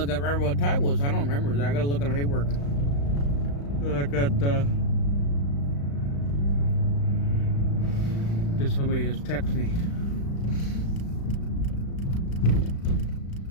up remember what time it was. I don't remember. I gotta look at the paperwork. But I got just somebody has texted me.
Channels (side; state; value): right; late; 35 ms